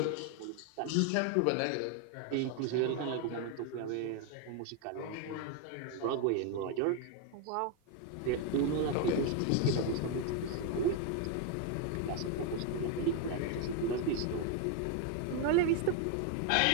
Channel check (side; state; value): both; different; correlation 0.01